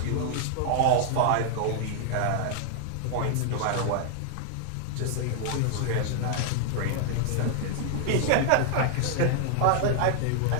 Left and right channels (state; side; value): different; both; correlation 0.00